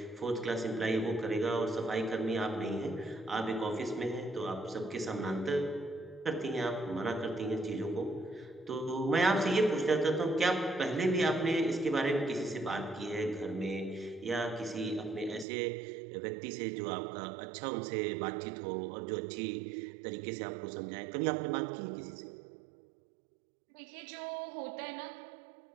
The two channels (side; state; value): left; drops out; at 15.5 s